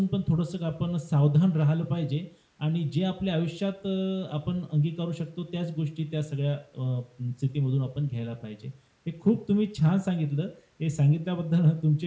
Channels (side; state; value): both; identical; correlation 1.00